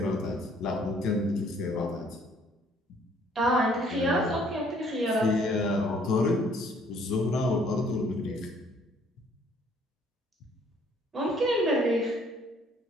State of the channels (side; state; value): both; normal; correlation 0.61